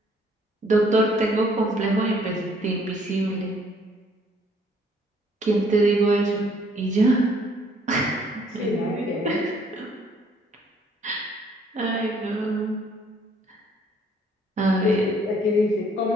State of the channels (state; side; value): normal; both; correlation 0.62